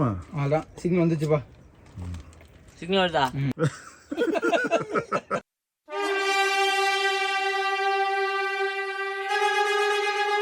அதான் சிக்னல் வந்துச்சுப்பா. சிக்னல் வருதா?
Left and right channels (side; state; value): both; identical; correlation 1.00